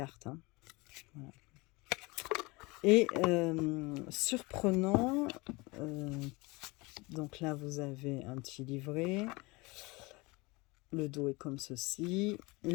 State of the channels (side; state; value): right; quieter; 24.6 dB